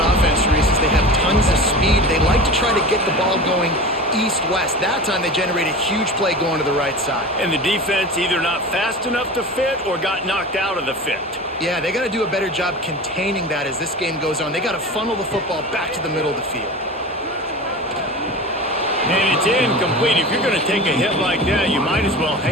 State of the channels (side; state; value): both; normal; correlation 0.32